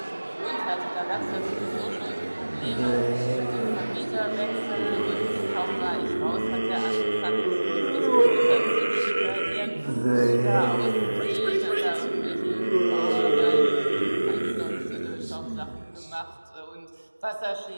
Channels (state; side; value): inverted; both; correlation -1.00